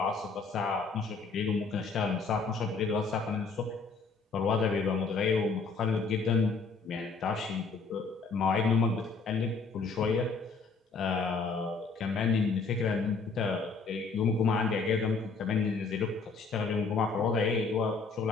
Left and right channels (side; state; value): right; quieter; 4.5 dB